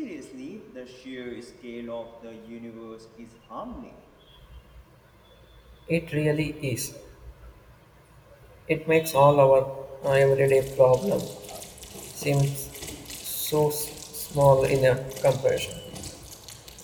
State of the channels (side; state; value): both; identical; correlation 1.00